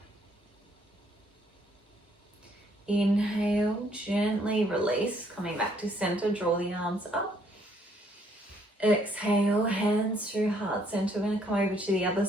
Inhale, gently release, coming back to center, draw the arms up. Exhale, hands through heart center. We're going to come over to the other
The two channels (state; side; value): normal; both; correlation 0.67